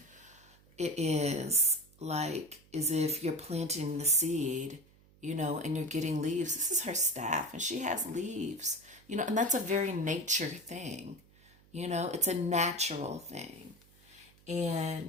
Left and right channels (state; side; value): noise; right; hum, 28 dB below the sound